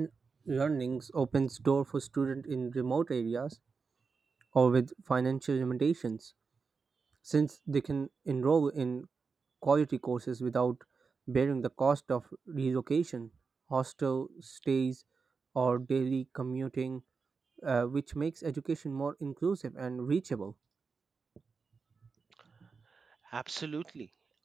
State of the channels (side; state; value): left; quieter; 4.9 dB